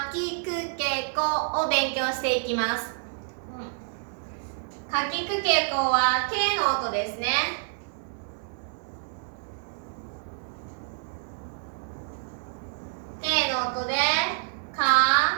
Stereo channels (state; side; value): silent; left; 59 dB below the other